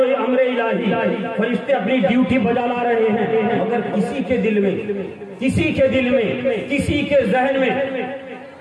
الہی فرشتے اپنی ڈیوٹی بجا لا رہے ہیں، مگر کسی کے دل میں، کسی کے ذہن میں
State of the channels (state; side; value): identical; both; correlation 1.00